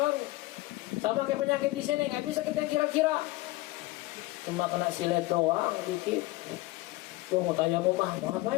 Sama kayak penyakit di sini, nggak bisa kita kira-kira. Cuma kena silet doang dikit. Mau tanya mau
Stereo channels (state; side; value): quieter; right; 19.6 dB